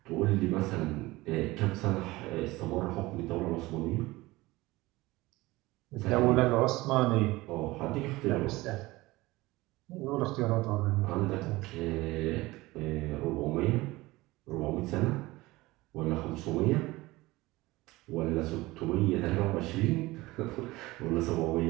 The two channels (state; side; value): quieter; left; 20.0 dB